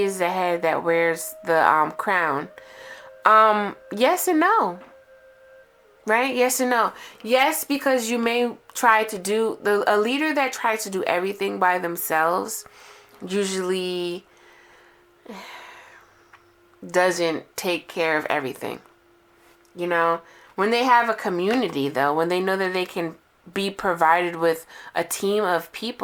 is the head that wears the crown. Yes and no. Right? Yes and no. Yes, because you may try to do a leader that tries to do everything by themselves usually doesn't take care of everything. When they have a community though, when they know that they can be provided with a team of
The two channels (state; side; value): identical; both; correlation 1.00